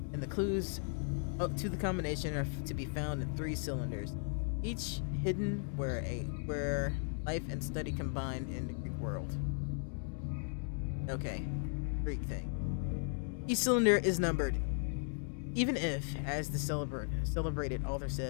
and the clues up to the combination are to be found in 3 cylinders, each hidden where life and study combine in the Greek world. Okay, Greek thing. Each cylinder is numbered. Even if, as the celebrated author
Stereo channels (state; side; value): silent; right; 53 dB below the other